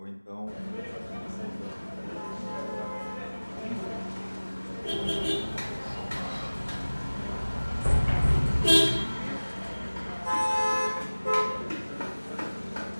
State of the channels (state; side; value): inverted; both; correlation -1.00